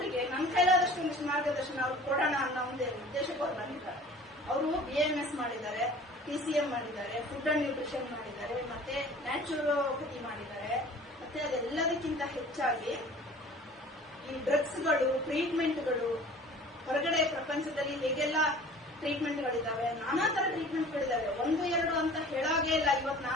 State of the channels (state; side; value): normal; both; correlation 0.46